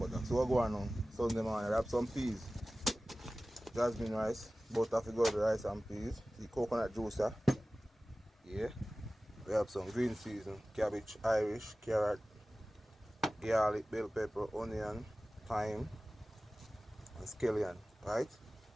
So what go on now? Sunday morning, I have some peas, jasmine rice, butter for good rice and peas, the coconut juicer. Yeah. We have some green season, cabbage, Irish, carrot, garlic, bell pepper, onion, thyme, and scallion, right?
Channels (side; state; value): both; normal; correlation 0.97